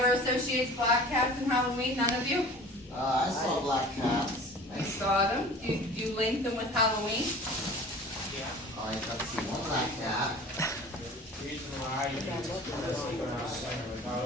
associates black cats and Halloween? None of you? I saw black cats. I saw them. Do you link them with Halloween? I got to see one black cat. The reason why I do this is because I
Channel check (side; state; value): both; normal; correlation 0.43